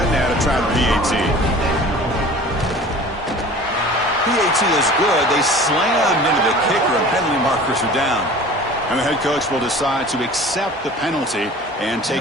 now to try the PAT. PAT is good. They slammed into the kicker, and penalty markers are down. And the head coach will decide to accept the penalty and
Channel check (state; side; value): normal; both; correlation 0.43